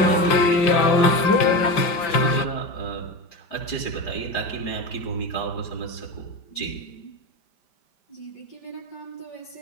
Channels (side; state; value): right; late; 5.1 ms